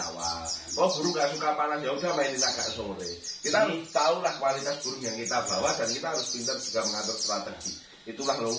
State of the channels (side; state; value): both; identical; correlation 1.00